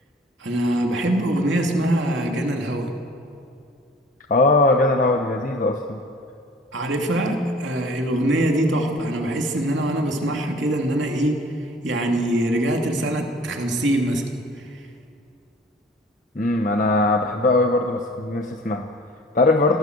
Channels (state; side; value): normal; both; correlation 0.49